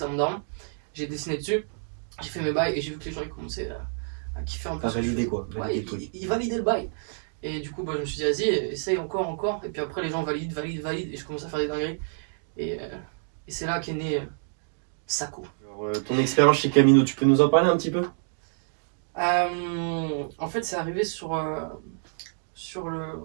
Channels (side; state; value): left; silent; digital silence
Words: à mon daron. J'ai dessiné dessus. J'ai fait mes bails et j'ai vu que les gens ils commençaient à kiffer un peu. À valider quoi. Ouais, ils validaient le bail. Et du coup, je me suis dit, vas-y, essaye encore. Et puis après, les gens valident. Et je commence à faire des dingueries. Et c'est là qu'est né Sakou. Alors, ton expérience chez Camino, tu peux nous en parler un petit peu? En fait, c'est arrivé sur un